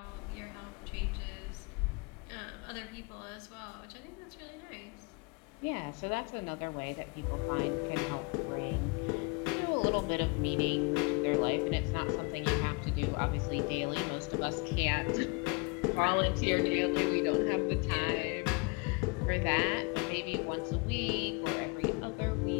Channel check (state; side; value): quieter; right; 29.7 dB